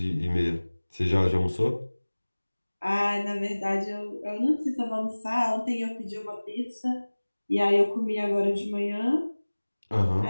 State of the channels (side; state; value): both; inverted; correlation -1.00